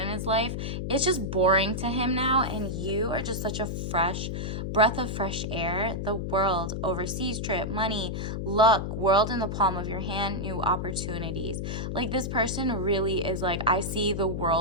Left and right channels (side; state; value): left; noise; hum, 3 dB below the sound